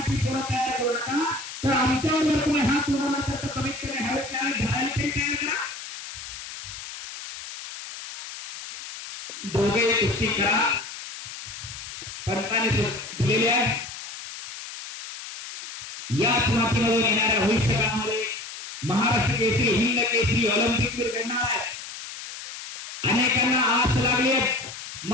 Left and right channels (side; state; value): left; noise; hiss, 11 dB below the sound